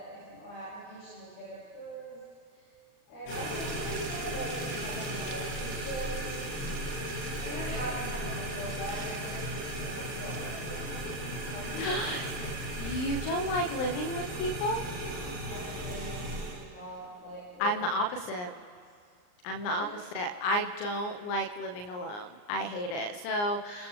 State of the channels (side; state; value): right; late; 39 ms